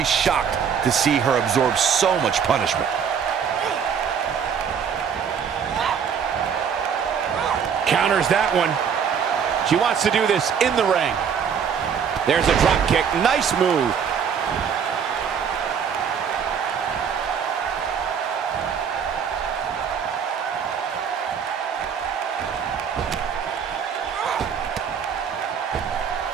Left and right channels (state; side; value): quieter; left; 7.3 dB